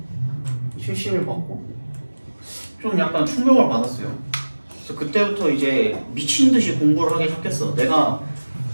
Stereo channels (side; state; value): both; inverted; correlation -1.00